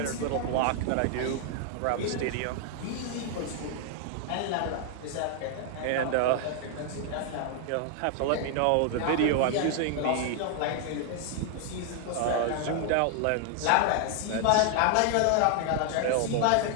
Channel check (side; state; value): both; different; correlation 0.00